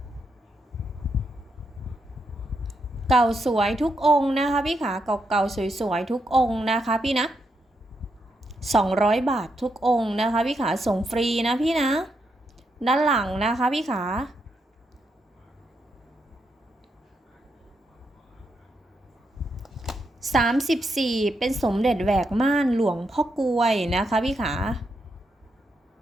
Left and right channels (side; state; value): both; normal; correlation 0.81